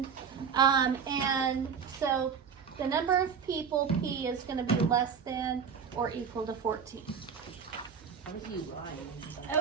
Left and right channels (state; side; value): quieter; left; 6.7 dB